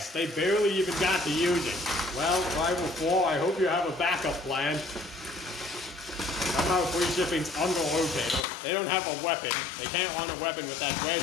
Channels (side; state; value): right; drops out; at 8.5 s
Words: They barely even got to use it. Well, Rival 4, I hope you have a backup plan. Somehow free shipping's under Rotator. They don't have a weapon. They can't run a weapon with that wedge